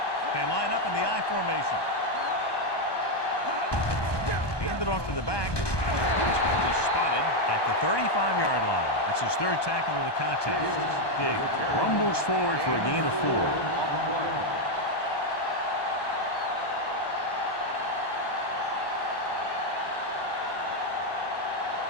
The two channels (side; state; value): right; late; 1.2 ms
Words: They line up in the I formation. Hand it off to the back. This one is spotted at the 35-yard line. That's his third tackle of the contest. Diggs rumbles forward for a gain of 4.